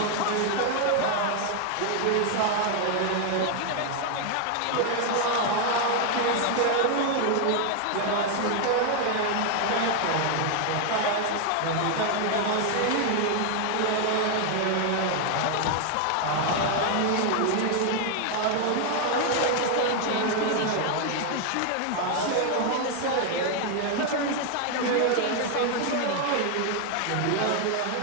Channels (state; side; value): different; both; correlation 0.00